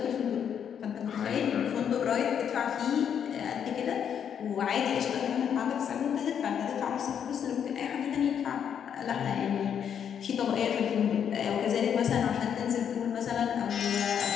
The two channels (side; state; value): right; quieter; 8.3 dB